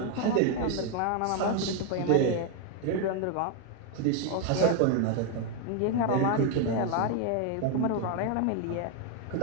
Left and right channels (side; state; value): both; different; correlation 0.01